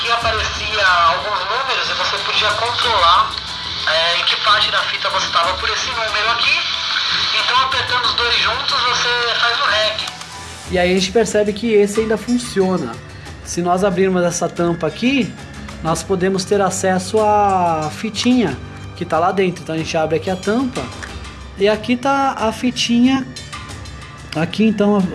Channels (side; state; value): both; identical; correlation 1.00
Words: aparecia alguns números e você podia controlar em que parte da fita você estava por esse número aqui. Então apertando os dois juntos você faz o REC. E aí a gente percebe que esse ainda funciona. Se nós abrirmos essa tampa aqui, nós podemos ter acesso à fitinha que está lá dentro. Então a gente abre aqui a tampa e aqui está a fitinha aqui, então